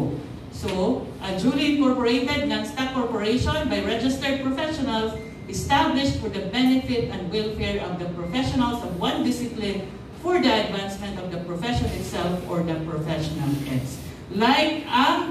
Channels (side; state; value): both; identical; correlation 1.00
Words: So, a duly incorporated non-stock corporation by registered professionals established for the benefit and welfare of the professionals of one discipline for the advancement of the profession itself or the professional heads. Like